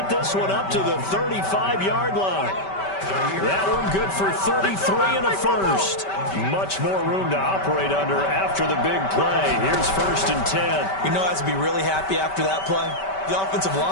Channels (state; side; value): late; right; 5.2 ms